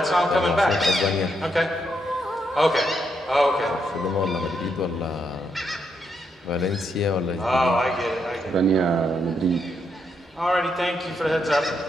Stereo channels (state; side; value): normal; both; correlation 0.79